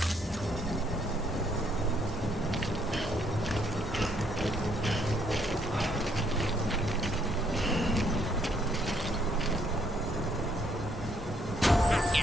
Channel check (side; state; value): both; normal; correlation 0.69